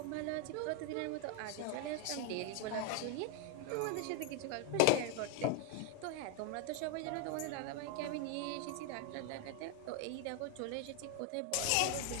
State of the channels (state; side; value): different; both; correlation 0.01